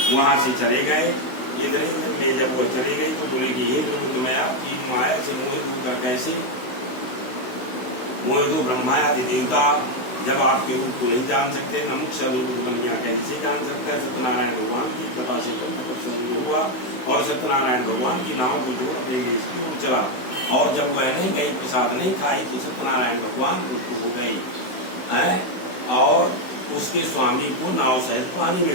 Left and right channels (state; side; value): late; right; 16 ms